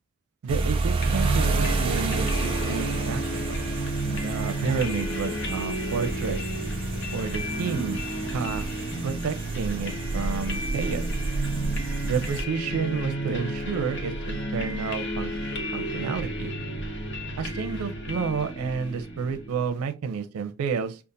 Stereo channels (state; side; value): quieter; left; 3.1 dB